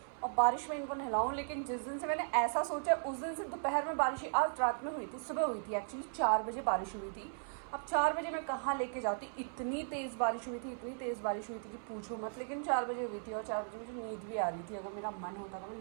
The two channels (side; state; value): left; silent; 53 dB below the other